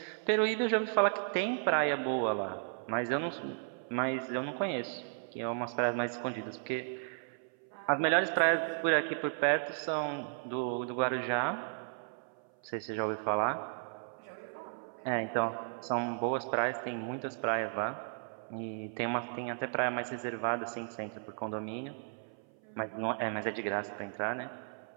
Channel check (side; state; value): left; silent; 55 dB below the other